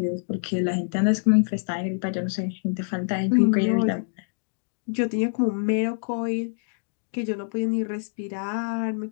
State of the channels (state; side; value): silent; right; digital silence